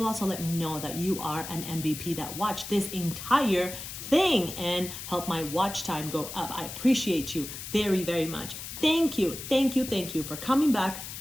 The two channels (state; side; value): noise; left; hiss, 9 dB below the sound